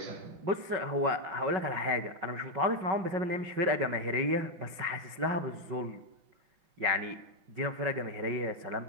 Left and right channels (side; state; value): left; late; 5.4 ms